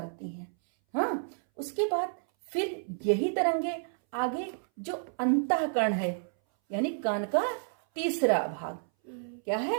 हैं। हाँ, उसके बाद फिर यही तरंगे आगे जो अंतःकर्ण है, यानी कान का तीसरा भाग, क्या है?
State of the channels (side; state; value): left; silent; 58 dB below the other